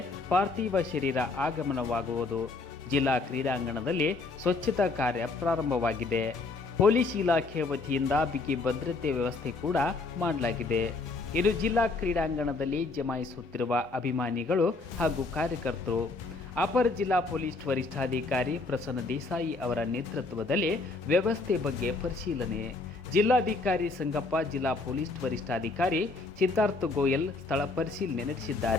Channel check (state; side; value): quieter; right; 3.6 dB